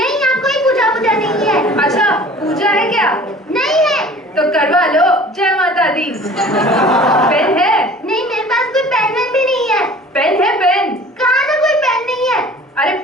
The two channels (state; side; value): normal; both; correlation 0.46